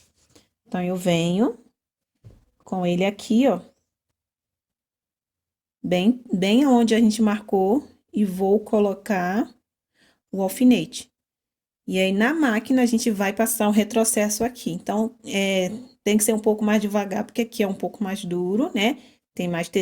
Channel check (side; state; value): both; identical; correlation 1.00